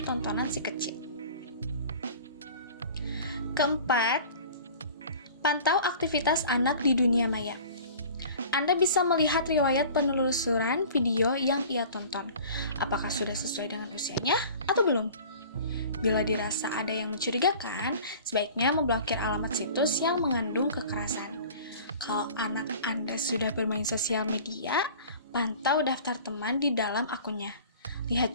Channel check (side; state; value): both; inverted; correlation -0.44